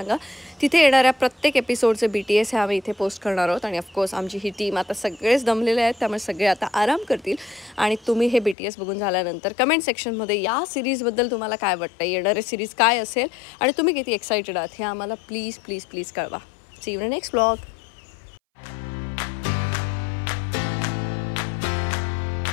तिथे येणाऱ्या प्रत्येक एपिसोडचे BTS हे आम्ही इथे पोस्ट करणार आहोत. आणि ऑफकोर्स आमची ही टीम आता सगळेच दमलेले आहेत, त्यामुळे सगळे आता आराम करतील. आणि तुम्ही हे BTS बघून झाल्यानंतर कमेंट सेक्शनमध्ये या सिरीजबद्दल तुम्हाला काय वाटतं, येणारे सिरीज काय असेल आणि तुम्ही किती एक्सायटेड आहात हे आम्हाला प्लीज प्लीज प्लीज कळवा. See you in next vlog.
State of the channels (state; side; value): drops out; right; at 8.6 s